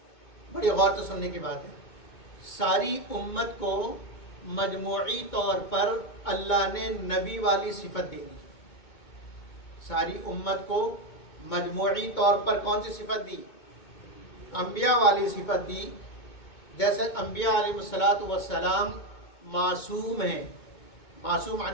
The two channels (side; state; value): right; late; 2.2 ms